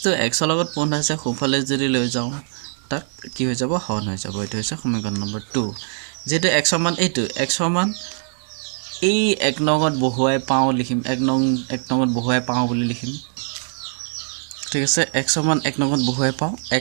to x লগত পূৰ্ণ আছে সোফালে যদি লৈ যাও তাক কি হৈ যাব হৰণ হৈ যাব এটো হৈছে সমীকৰণ নম্বৰ 2 যেটো x সমান এইটো x সমান এই এক নংত বহুৱাই পাও লিখিম এক নংত বহুৱাই পাও বুলি লিখিম ঠিক আছে x সমান এক নংত বহুৱাই পাও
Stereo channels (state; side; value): silent; left; digital silence